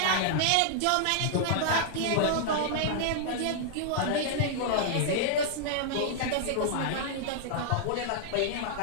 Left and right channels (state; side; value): different; both; correlation -0.01